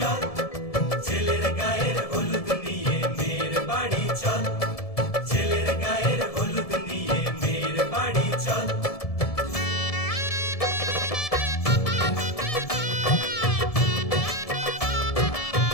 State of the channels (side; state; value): right; late; 1.7 ms